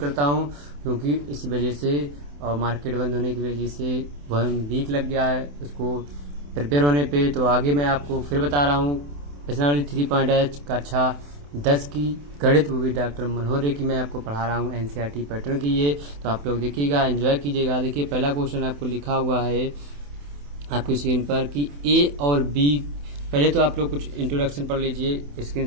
हूँ, क्योंकि इस वजह से और मार्केट बंद होने की वजह से 1 वीक लग गया है उसको प्रिपेयर होने पे। तो आगे मैं आपको फिर बता रहा हूँ प्रश्नावली 3.H कक्षा 10 की गणित, वो भी डॉक्टर मनोहर की मैं आपको पढ़ा रहा हूँ NCERT पैटर्न की। ये तो आप लोग देखिएगा, एंजॉय कीजिएगा। देखिए, पहला क्वेश्चन आपको लिखा हुआ है आपकी स्क्रीन पर कि A और B। पहले तो आप लोग कुछ इंट्रोडक्शन पढ़ लीजिए,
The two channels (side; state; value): left; late; 28 ms